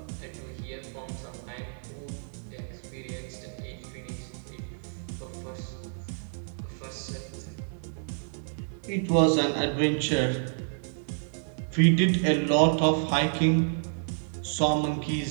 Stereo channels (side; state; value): left; silent; digital silence